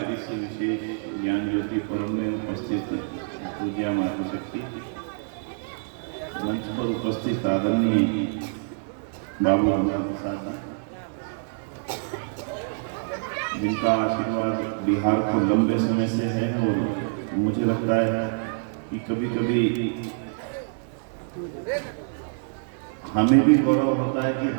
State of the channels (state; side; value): silent; left; digital silence